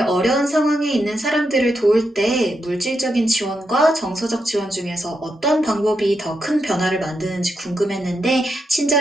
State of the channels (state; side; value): normal; both; correlation 0.84